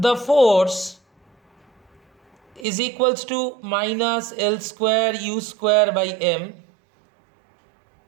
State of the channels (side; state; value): left; drops out; at 2.7 s